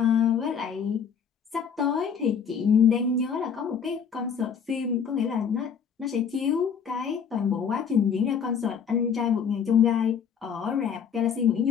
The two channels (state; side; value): quieter; right; 7.1 dB